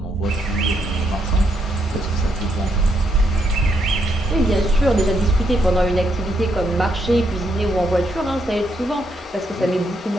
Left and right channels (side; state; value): both; normal; correlation 0.76